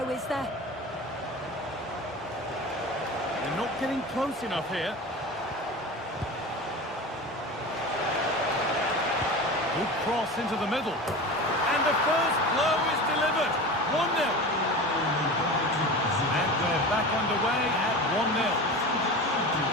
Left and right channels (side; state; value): both; normal; correlation 0.31